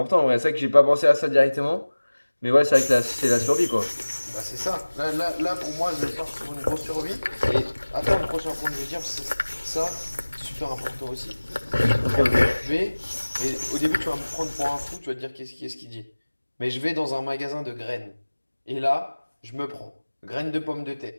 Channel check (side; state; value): both; inverted; correlation -1.00